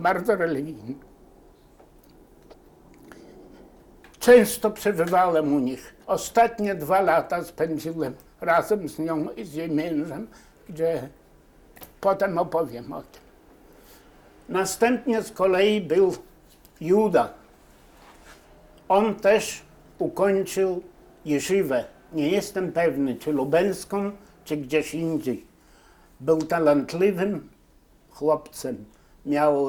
religijna. Często przebywałem u nich. Ostatnie 2 lata spędziłem razem z nią i z jej mężem, gdzie potem opowiem o tym. Następnie z kolei był Juda. On też ukończył jeszywę. Nie jestem pewny, czy lubelską, czy gdzieś indziej. Był talentliwym chłopcem.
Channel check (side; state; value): both; identical; correlation 1.00